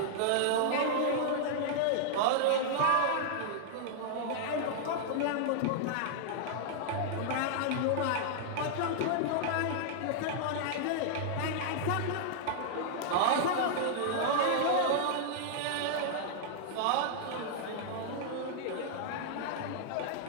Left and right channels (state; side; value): different; both; correlation -0.01